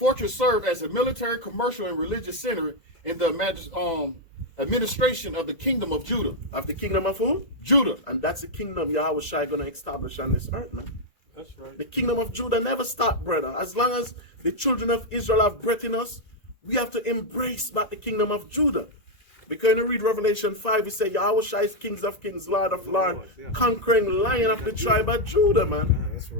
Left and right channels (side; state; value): right; late; 1.9 ms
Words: served as a military, commercial, and religious center in the administration of the kingdom of Judah. Of the kingdom of who? Judah. And that's the kingdom Yahushua going to establish on this earth, man. That's right. The kingdom of Judah never stopped, brother. As long as the children of Israel have breath in us, we have to embrace back the kingdom of Judah. Because when you read Revelation 5, it says Yahushua is kings of kings, Lord of lords, conquering lion of the tribe of Judah, man. That's